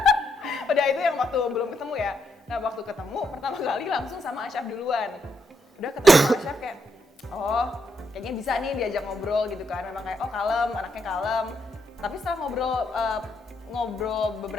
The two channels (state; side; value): normal; both; correlation 0.78